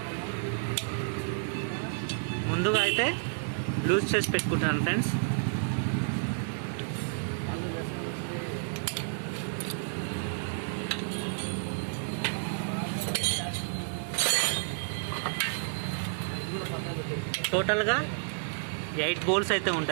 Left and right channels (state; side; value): silent; left; digital silence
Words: ముందుగా అయితే లూజ్ చేసి పెట్టుకుంటున్నాను ఫ్రెండ్స్. టోటల్గా 8 బోల్స్ అయితే